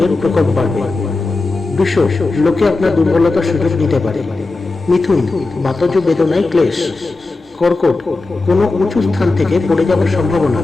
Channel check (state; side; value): quieter; right; 3.5 dB